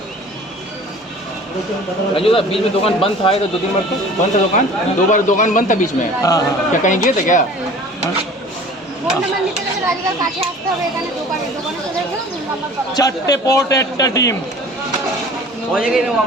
राजू दा बीच में दुकान बंद था, तो 2-3 बार तो बंद था दुकान, 2 बार दुकान बंद था बीच में। हाँ। क्या कहीं गए थे क्या? ফোন নাম্বার নিতে গেলে রাজুদার কাছে আসতে হবে, এখানে দোকানে চলে গেলে ফোন নাম্বার পাবে। 4টে পরোটা একটা ডিম।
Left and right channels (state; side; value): normal; both; correlation 0.45